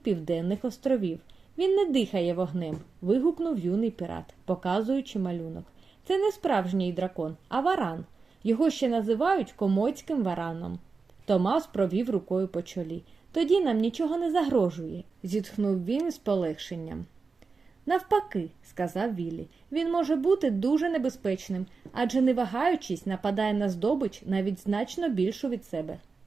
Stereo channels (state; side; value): quieter; left; 4.5 dB